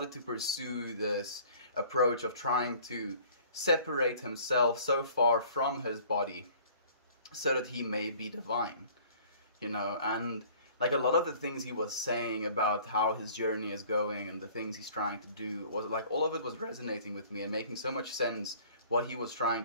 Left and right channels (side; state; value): both; inverted; correlation -0.51